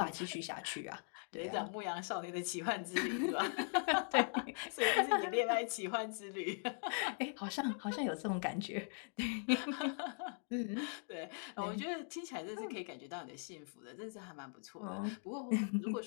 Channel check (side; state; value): right; silent; 51 dB below the other